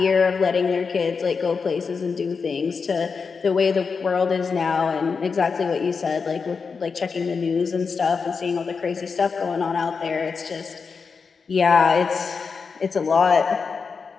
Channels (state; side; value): quieter; right; 5.3 dB